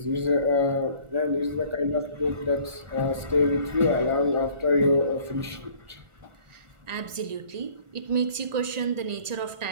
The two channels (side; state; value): left; late; 1.4 ms